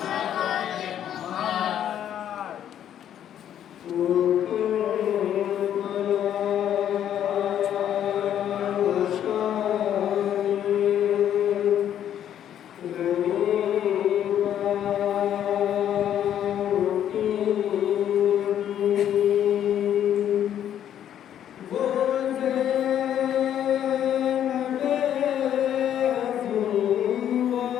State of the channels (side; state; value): right; quieter; 10.3 dB